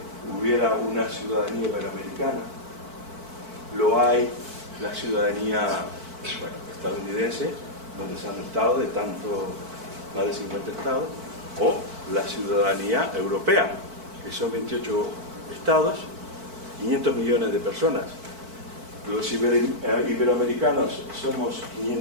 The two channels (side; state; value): left; late; 4.5 ms